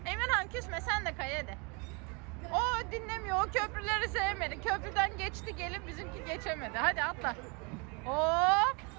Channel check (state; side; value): quieter; left; 32.0 dB